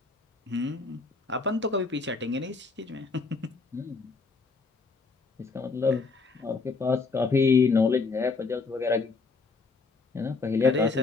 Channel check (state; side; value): quieter; right; 4.2 dB